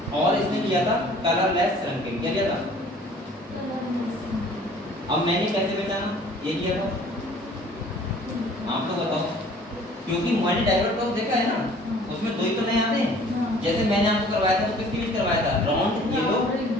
और इसने लिया था कलरलेस श्रंकिंग, क्या लिया था? अब मैंने कैसे पहचाना ये लिया था? आप तो बताओ, क्योंकि मैंने डाइवर्ट क्रॉस देखा है ना, उसमें 2 ही तो नहीं आते हैं। जैसे मैंने आपको करवाया था तो किसके लिए करवाया था? राउंड येलो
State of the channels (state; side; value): normal; both; correlation 0.52